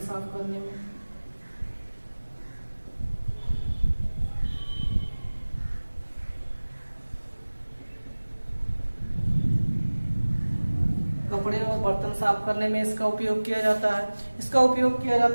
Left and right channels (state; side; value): inverted; both; correlation -1.00